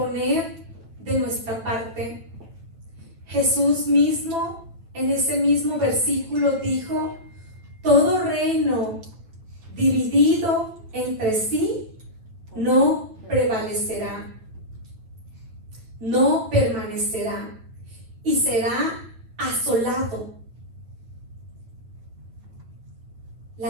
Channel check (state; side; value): late; left; 9.1 ms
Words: de nuestra parte. Jesús mismo, en ese mismo versículo, dijo, todo reino dividido entre sí no prevalecerá, no permanecerá y será asolado.